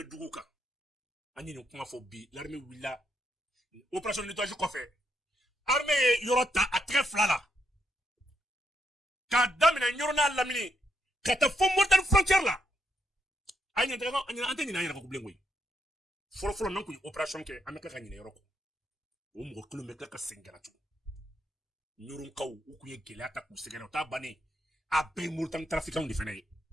dugu kan ani ni kuma fo bi l'armée willa opération nettoyage ko fait armée yorota a très flala ka damina ñorona lamini ka ta fo Mauritanie frontière la ay ñanta ko ani anteni na yara ko blengoy folo nan ko opération ke ameka ka ñine yoroko o mo kilomètre ka sengara tu ñorun kaw u ku ye gele ta ku segena ta bani a be Mauritanie trafiquant de fene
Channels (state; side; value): normal; both; correlation 0.79